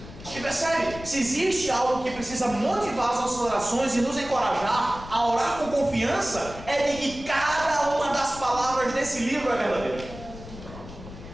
E percebe, se existe algo que precisa motivar as nossas orações e nos encorajar a orar com confiança, é de que cada uma das palavras desse livro é verdadeira.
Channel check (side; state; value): left; noise; rumble, 14 dB below the sound